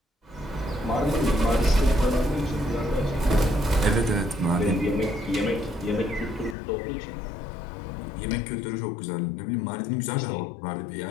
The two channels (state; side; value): drops out; right; at 6.6 s